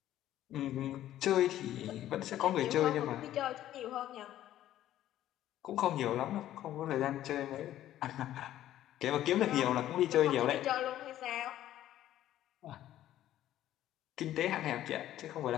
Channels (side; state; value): right; quieter; 12.8 dB